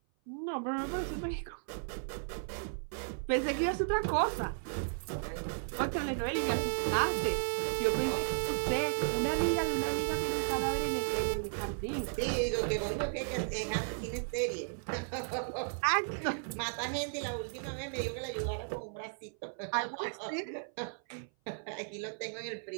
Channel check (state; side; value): silent; left; 55 dB below the other